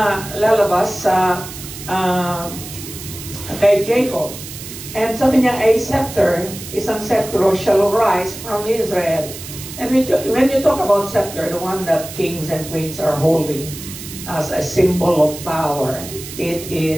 lalabas sa kay Jacob. And sabi niya, a scepter, isang scepter shall rise from Israel. And when you talk about scepter, the one that kings and queens are holding as a symbol of power, it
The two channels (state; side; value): noise; right; hiss, 12 dB below the sound